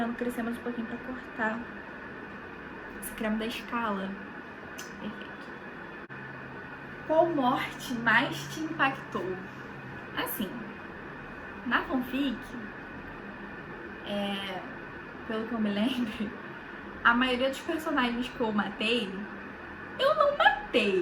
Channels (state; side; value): identical; both; correlation 1.00